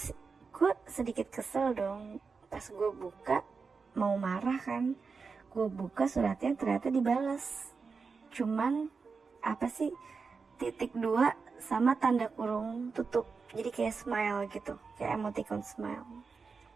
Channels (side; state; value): left; quieter; 4.9 dB